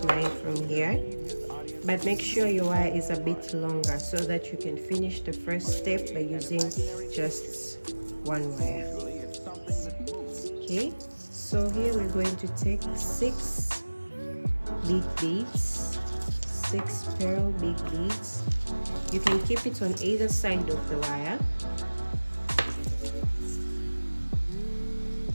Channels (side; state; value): both; inverted; correlation -1.00